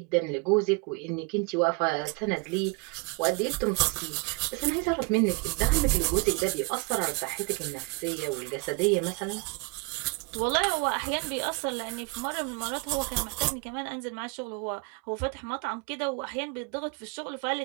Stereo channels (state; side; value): quieter; left; 28.9 dB